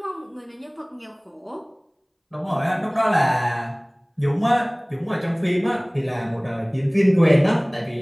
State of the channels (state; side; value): identical; both; correlation 1.00